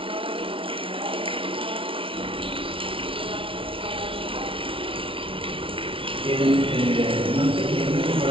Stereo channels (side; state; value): left; late; 0.25 ms